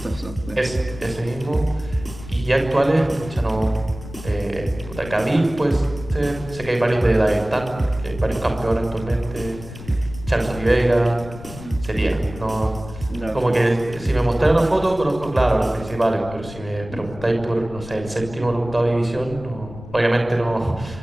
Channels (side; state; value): left; noise; rumble, 14 dB below the sound